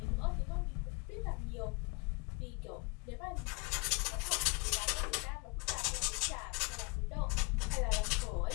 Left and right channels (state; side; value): quieter; right; 28.4 dB